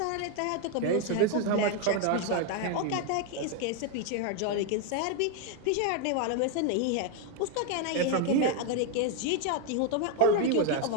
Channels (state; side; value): different; both; correlation 0.01